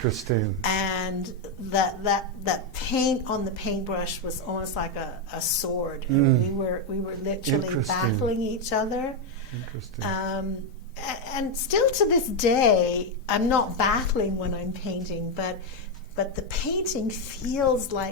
And that paint on the paintbrush was almost like a sword. And we were literally Interesting. battling each other. Interesting. And still to this day, I'm not battling when I'm painting, but the painting feels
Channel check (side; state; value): both; normal; correlation 0.04